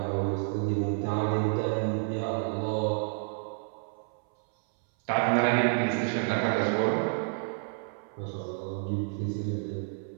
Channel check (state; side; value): silent; left; 58 dB below the other